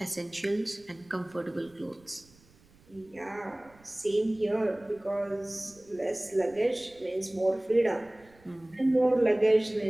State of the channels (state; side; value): noise; right; rumble, 28 dB below the sound